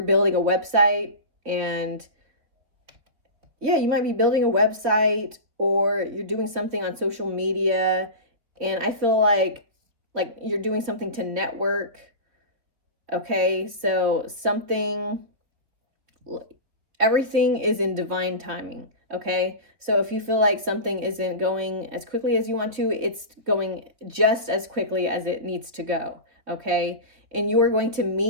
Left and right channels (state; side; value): late; left; 3.8 ms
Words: building a website, and yeah, you might be building a website, or you're doing something on social media, and I feel like you're doing something to network. Okay, so everything is in divine timing. Okay, so if you feel like something isn't going as quickly as you want to, it's going just as quickly as it needs to go. Okay, and you are going to